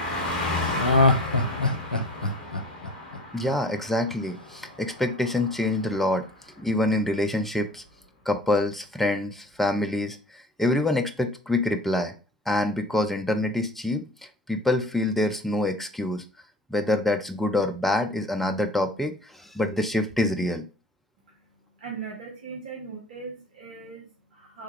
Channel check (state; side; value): normal; both; correlation 0.41